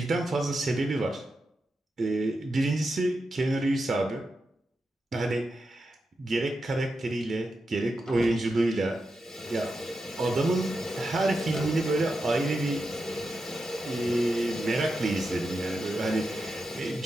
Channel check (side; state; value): both; normal; correlation 0.88